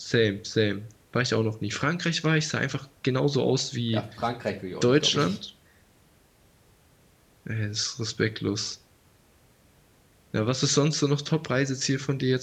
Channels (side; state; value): both; identical; correlation 1.00